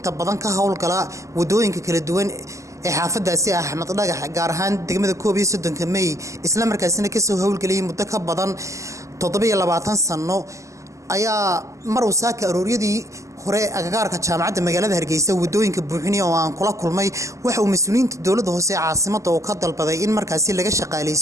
badan ka howlgala wadooyinka kala duwan ee xaafadaasi Axmed Dhagax gaar ahaan degmada 31 May isla markaasina ka soo howlgalay muddo ka badan 27 sano ayaa mar uu saaka arooriyadii hore agagaarka jaamacadda magaalada Hargeysa wadooyinka buuxinay oo aan kula kulmay waxa uu mas'uuliyiinta dawladda hoose ee caasimadda oo ka dalbaday in markaasi laga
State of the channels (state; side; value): late; left; 0.15 ms